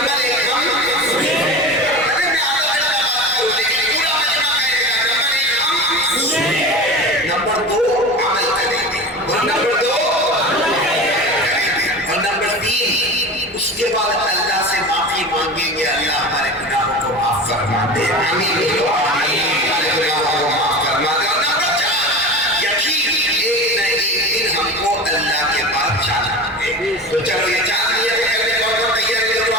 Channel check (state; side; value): normal; both; correlation 0.31